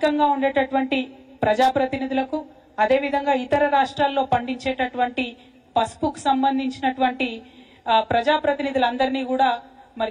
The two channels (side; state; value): both; identical; correlation 1.00